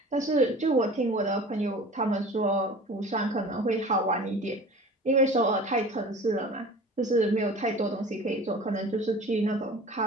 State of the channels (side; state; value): both; normal; correlation 0.40